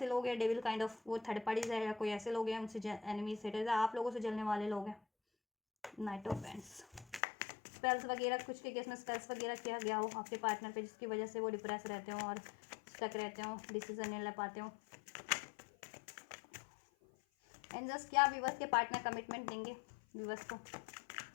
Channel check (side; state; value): right; drops out; at 7.2 s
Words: लोग हैं डेविल काइंड ऑफ, वो थर्ड पार्टीज है, या कोई ऐसे लोग हैं उनसे एनिमीज सेटर्स, आप लोगों से जलने वाले लोग हैं। नाइट ऑफ पेंट्स, स्पेल्स वगैरह, कुछ के केस में स्पेल्स वगैरह किया गया हो आपके पार्टनर पे, जिसकी वजह से वो डिप्रेस रहते हो और स्टक रहते हो, डिसीजन नहीं ले पाते हो। एंजल्स, क्या व्यूवर्स के पार्टनर कमिटमेंट देंगे व्यूवर्स को,